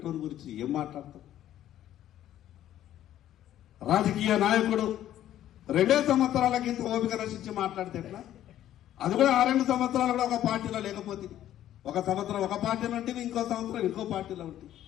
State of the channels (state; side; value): quieter; right; 12.2 dB